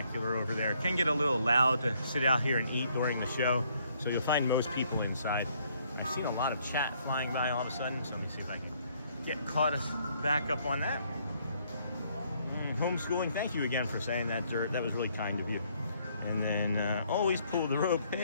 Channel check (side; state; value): both; inverted; correlation -0.68